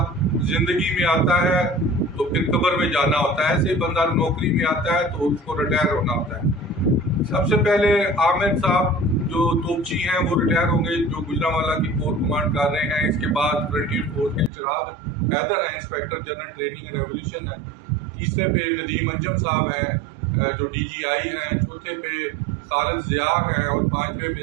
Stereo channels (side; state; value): left; drops out; at 14.5 s